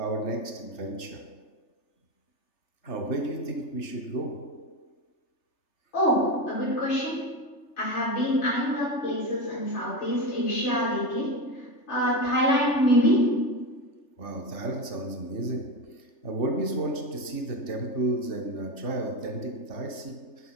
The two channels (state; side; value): late; right; 3.3 ms